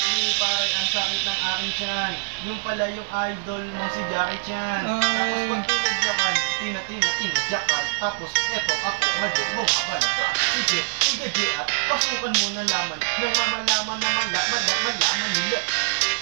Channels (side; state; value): left; silent; 63 dB below the other